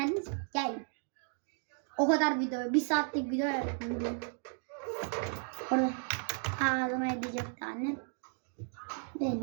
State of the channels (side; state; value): left; silent; 55 dB below the other